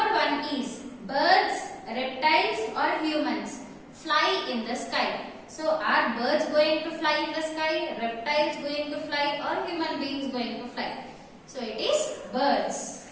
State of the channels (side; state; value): both; identical; correlation 1.00